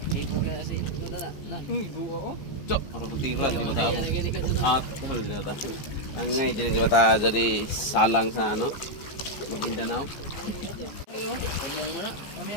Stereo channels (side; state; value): right; late; 15 ms